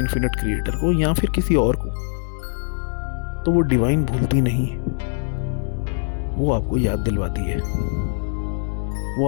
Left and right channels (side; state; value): right; silent; 64 dB below the other